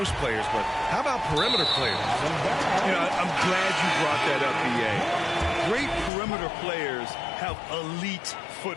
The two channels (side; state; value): right; drops out; at 6.1 s